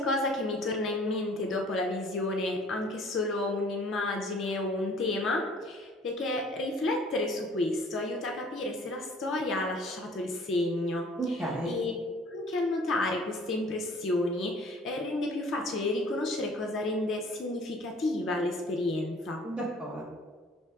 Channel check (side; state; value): both; normal; correlation 0.53